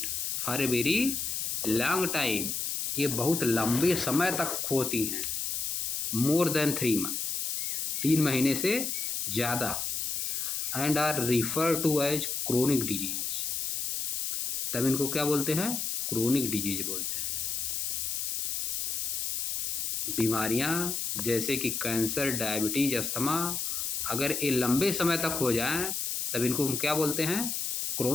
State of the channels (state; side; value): noise; left; hiss, 1 dB below the sound